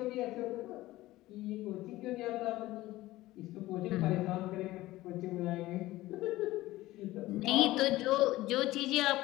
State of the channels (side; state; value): right; quieter; 17.3 dB